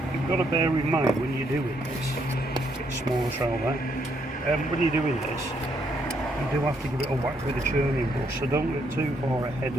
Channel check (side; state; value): both; normal; correlation 0.73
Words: You've got to bear in mind when you're doing this, get smaller shell there. When you're doing this, you do have to give it a whack with a churning brush, so don't get too far ahead